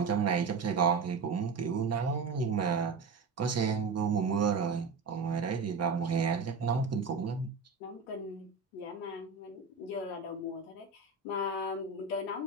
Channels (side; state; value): left; quieter; 4.6 dB